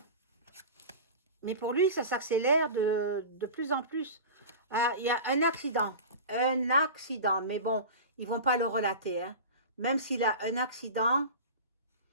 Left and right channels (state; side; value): inverted; both; correlation -0.32